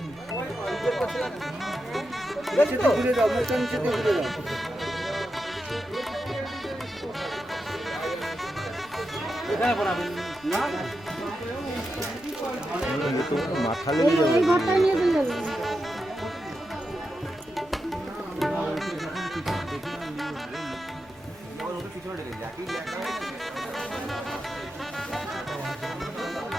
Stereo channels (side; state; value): both; normal; correlation 0.88